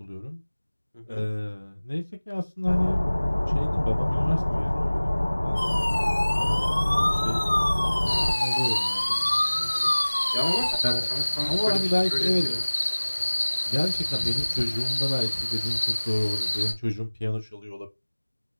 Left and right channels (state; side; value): inverted; both; correlation -1.00